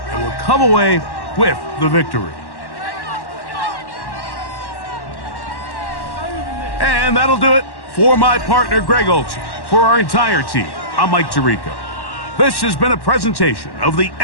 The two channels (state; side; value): late; right; 1.1 ms